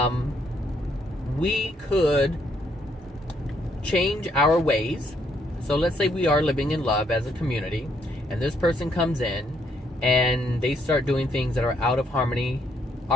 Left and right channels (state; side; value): normal; both; correlation 0.71